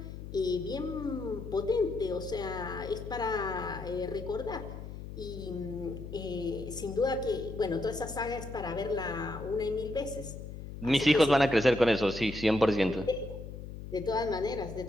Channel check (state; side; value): noise; left; hum, 10 dB below the sound